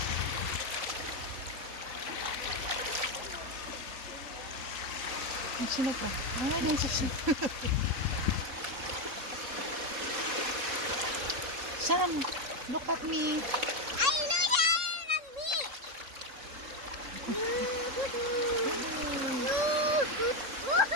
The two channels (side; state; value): left; late; 3.7 ms